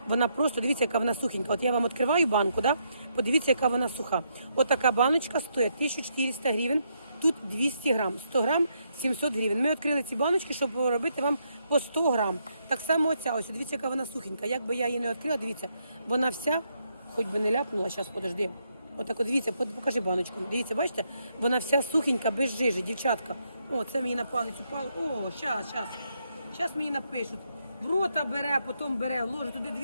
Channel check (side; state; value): both; inverted; correlation -0.77